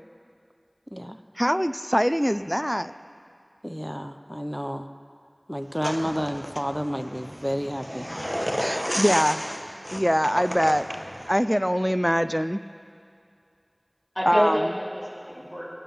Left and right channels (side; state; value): both; identical; correlation 1.00